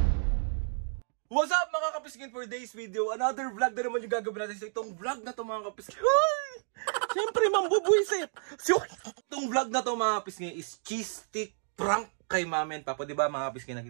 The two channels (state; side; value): silent; left; digital silence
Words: What's up mga kapiskin, for today's video? Another vlog na naman yung gagawin natin. So itong vlog na to mga kapiskin, siyempre mambubuisit. So itong vlog na to mga kapiskin is cheese stick prank kay Mama and Papa. Diba mga kapiskin,